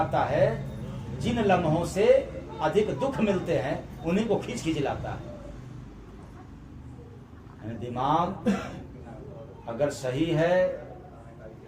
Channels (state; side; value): identical; both; correlation 1.00